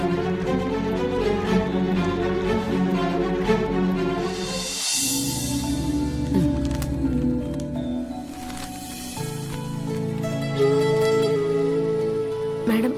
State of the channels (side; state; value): both; identical; correlation 1.00